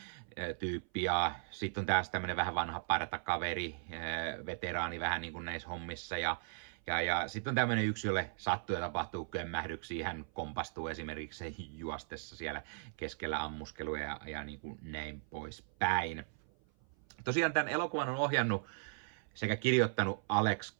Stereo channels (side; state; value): left; silent; 53 dB below the other